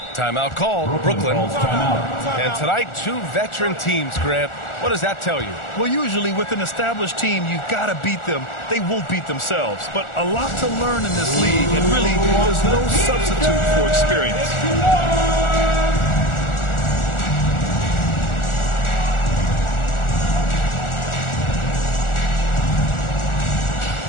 Timeout called, Brooklyn. And tonight, two veteran teams, Grant. What does that tell you? Well, usually with an established team, you've got to beat them. They won't beat themselves. But a lot to learn in this league, and really, there's no substitute for experience.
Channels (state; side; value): late; right; 1.4 ms